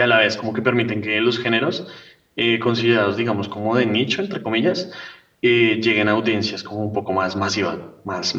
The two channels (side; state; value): both; identical; correlation 1.00